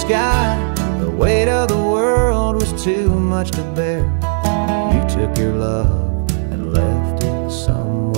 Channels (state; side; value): silent; left; digital silence